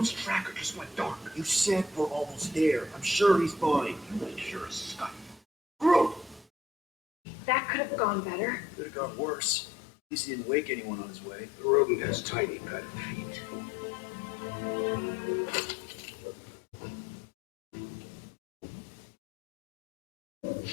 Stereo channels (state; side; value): drops out; right; at 6.5 s